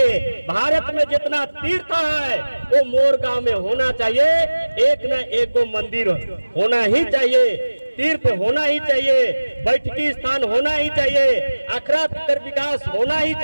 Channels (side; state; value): both; inverted; correlation -1.00